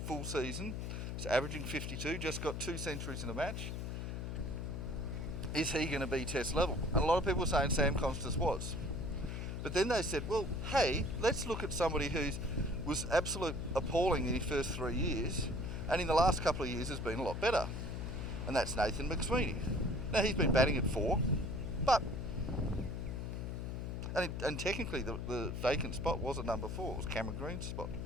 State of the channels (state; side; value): noise; left; hum, 4 dB below the sound